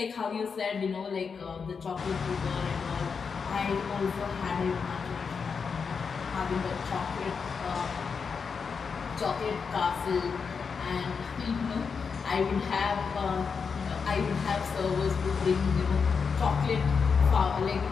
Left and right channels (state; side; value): quieter; right; 5.7 dB